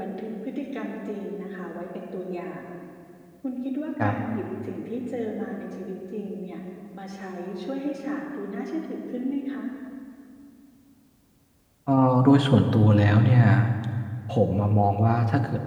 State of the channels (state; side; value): identical; both; correlation 1.00